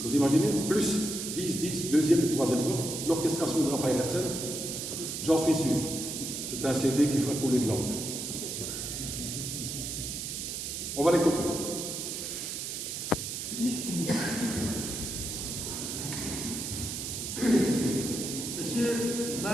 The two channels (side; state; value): right; noise; hiss, 5 dB below the sound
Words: vous imaginez, plus 10, deuxième et troisième voix, l'orchestration de Raphaël Hersen, j'en suis sûr. C'est un CD qui fera couler de l'encre. On va l'écouter. Monsieur,